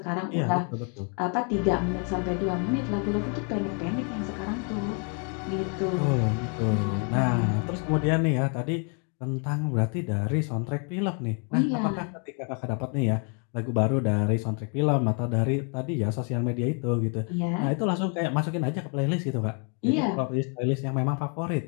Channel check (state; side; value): quieter; right; 39.5 dB